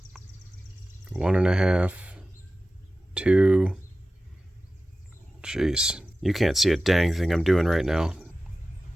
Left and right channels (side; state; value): both; normal; correlation 0.95